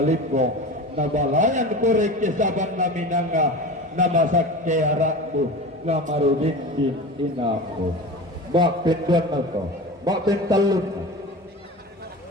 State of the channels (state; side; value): normal; both; correlation 0.31